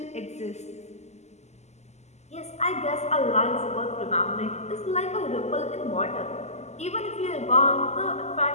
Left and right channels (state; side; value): late; right; 0.33 ms